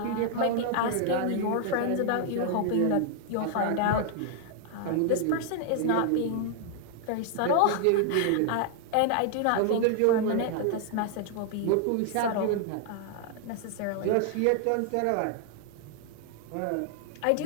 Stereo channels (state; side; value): different; both; correlation 0.00